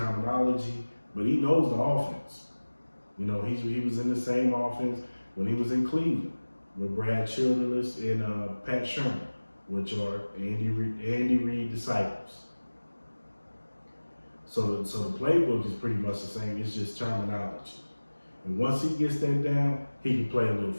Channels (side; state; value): both; inverted; correlation -1.00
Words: but he knows the offense. You know, he was in the same offense when he was in Cleveland with Brad Childress and Pat Shermer, which are Andy Reid disciples. So the playbook is pretty much the same. It's just terminology. And once he gets that down, he can play a little